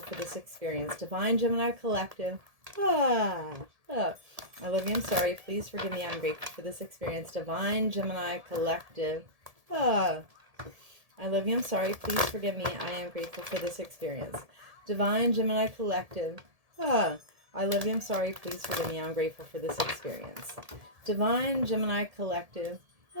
for this experience. Divine Gemini Collective. I love you, I'm sorry, please forgive me, I'm grateful for this experience. Divine Gemini Collective. I love you, I'm sorry, please forgive me, I am grateful for this experience. Divine Gemini Collective. I love you, I'm sorry, please forgive me, I'm grateful for this experience. Divine Gemini Collective.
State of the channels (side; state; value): left; late; 1.7 ms